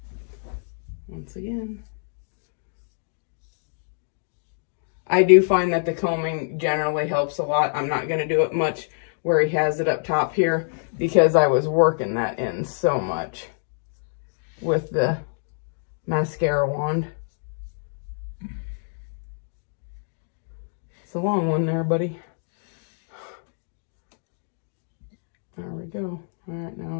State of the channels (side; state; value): right; silent; digital silence